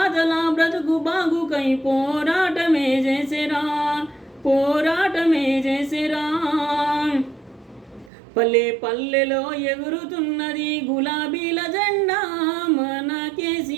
బ్రతుకు బాగుకై పోరాటమే చేసేరా, పోరాటమే చేసేరా. పల్లె పల్లెలో ఎగురుతున్నది గులాబీల జెండా, మన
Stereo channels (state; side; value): drops out; left; at 8.1 s